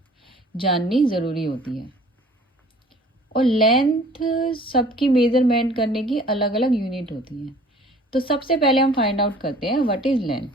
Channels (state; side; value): normal; both; correlation 0.51